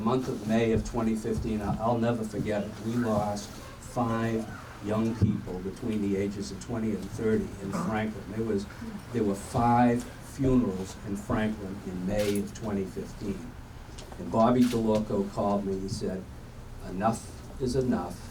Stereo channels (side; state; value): both; identical; correlation 1.00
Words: month of May of 2015, I'll never forget it. We lost 5 young people between the ages of 20 and 30 in Franklin. There were 5 funerals in Franklin in May of 2015. And Bobby DeLorco called me. He said, "Enough is enough.